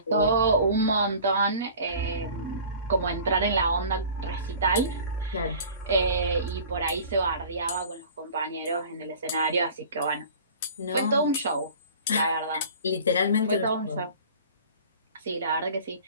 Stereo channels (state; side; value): inverted; both; correlation -0.44